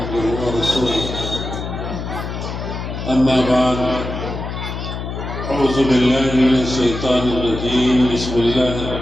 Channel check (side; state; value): left; noise; hum, 6 dB below the sound